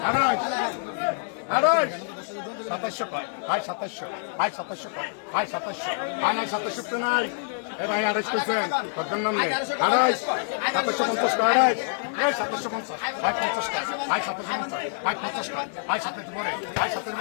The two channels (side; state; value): right; silent; digital silence